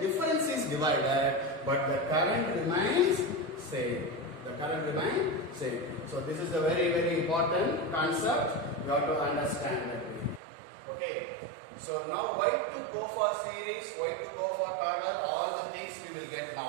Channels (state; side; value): drops out; left; at 10.4 s